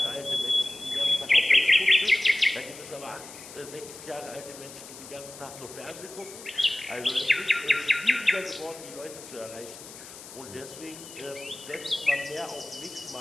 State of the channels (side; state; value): left; noise; hiss, 15 dB below the sound